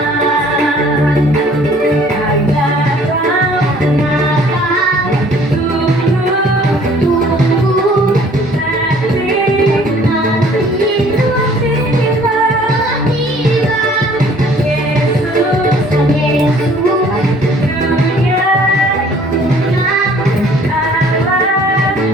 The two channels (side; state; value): both; normal; correlation 0.55